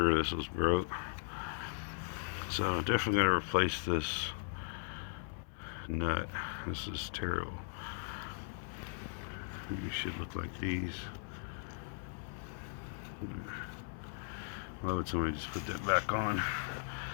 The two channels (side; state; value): right; silent; 52 dB below the other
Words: this was broke. So definitely gotta replace this nut. This is terrible. You should look like these. Why would somebody just put that back on?